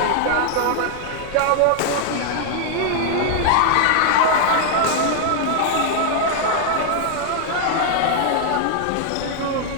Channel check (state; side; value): different; both; correlation 0.00